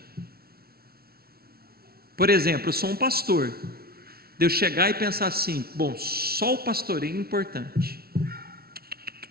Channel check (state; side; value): late; left; 0.44 ms